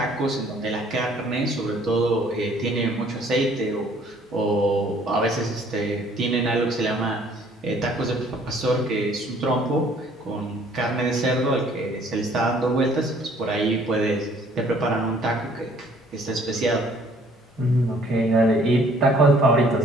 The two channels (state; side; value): normal; both; correlation 0.59